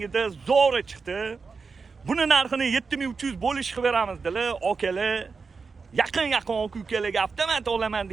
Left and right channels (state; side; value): quieter; left; 4.8 dB